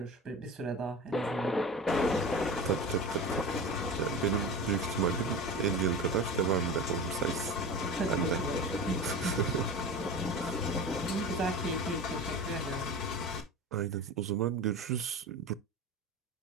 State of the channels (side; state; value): both; normal; correlation 0.30